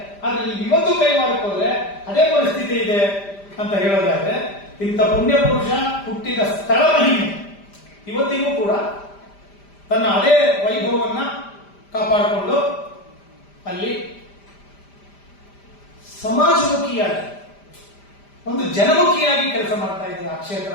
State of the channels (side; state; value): right; late; 5.0 ms